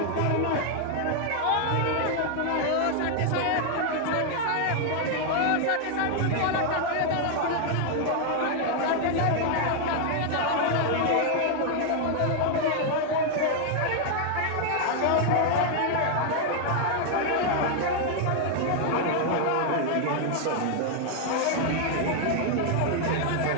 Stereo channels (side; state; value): both; different; correlation 0.00